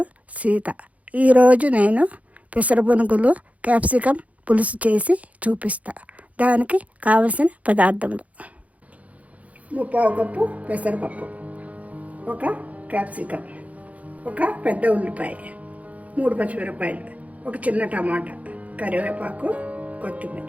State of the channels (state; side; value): late; left; 0.068 ms